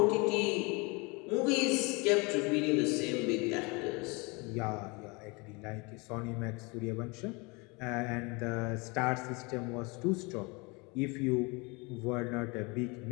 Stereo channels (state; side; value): quieter; right; 27.9 dB